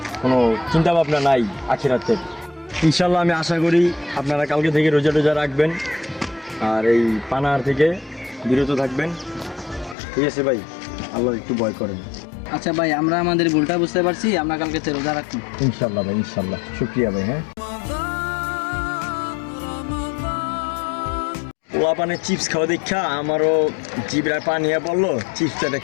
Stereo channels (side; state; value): right; drops out; at 10.0 s